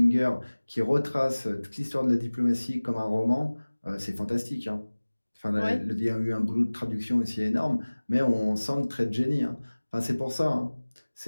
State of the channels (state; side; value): inverted; both; correlation -1.00